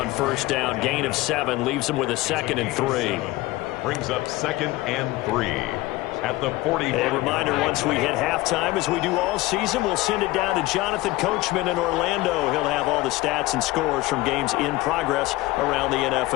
first down. Gain of 7 leaves him with a 2nd and 3. Brings up 2nd and 3 at the 40. A reminder, once we hit halftime, as we do all season, we'll send it down to Jonathan Coachman in Orlando. He'll have all the stats and scores from games in progress around the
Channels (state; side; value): quieter; right; 19.0 dB